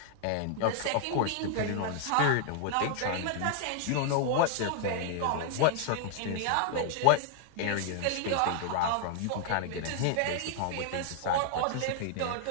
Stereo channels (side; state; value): both; different; correlation -0.01